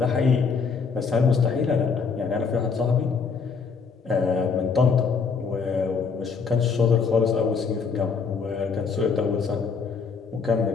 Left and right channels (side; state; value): right; quieter; 5.3 dB